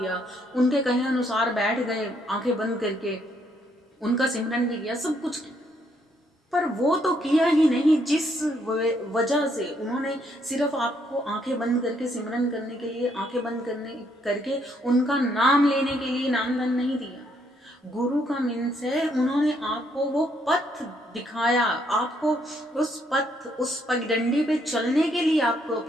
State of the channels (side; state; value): both; normal; correlation 0.71